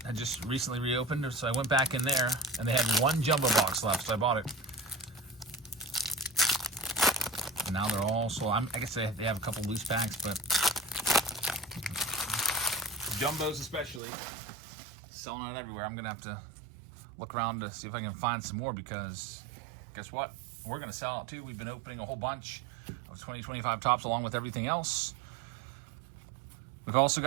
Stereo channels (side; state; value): left; drops out; at 14.0 s